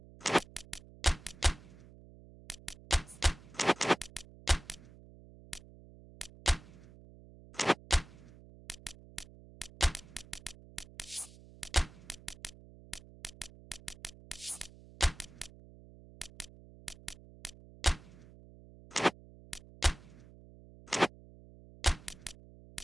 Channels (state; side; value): noise; right; hum, 20 dB below the sound